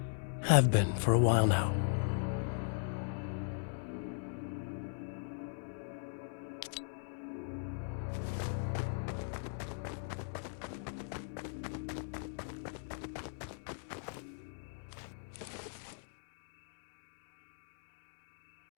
Have been for a while now.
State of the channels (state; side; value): silent; right; digital silence